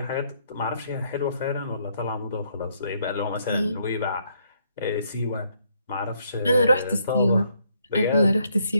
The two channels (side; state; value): both; inverted; correlation -0.71